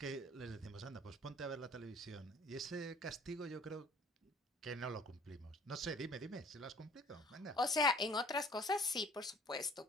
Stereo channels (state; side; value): normal; both; correlation 0.53